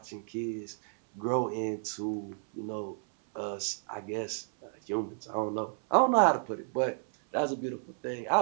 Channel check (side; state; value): left; silent; 57 dB below the other